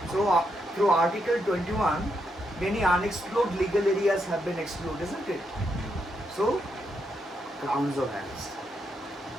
So through Article 21, many unexplored legal areas have been explored, isn't it? So, grounds of arrest.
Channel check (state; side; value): normal; both; correlation 0.80